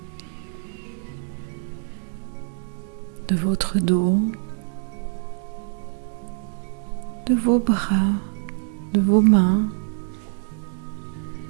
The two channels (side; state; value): left; silent; digital silence